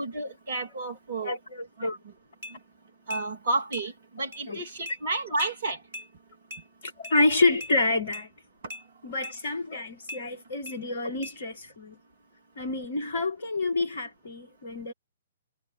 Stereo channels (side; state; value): both; inverted; correlation -0.76